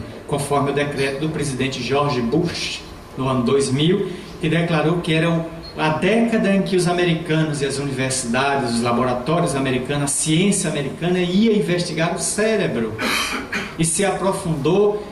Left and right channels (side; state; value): both; identical; correlation 1.00